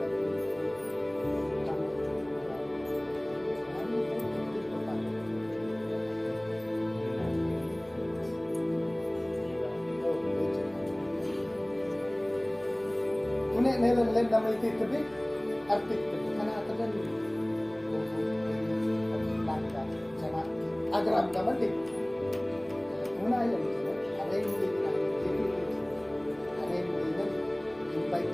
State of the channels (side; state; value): left; noise; hum, 27 dB below the sound